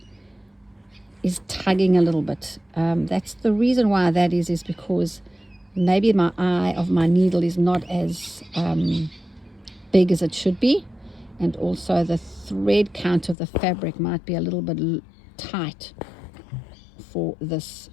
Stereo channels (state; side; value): drops out; right; at 13.4 s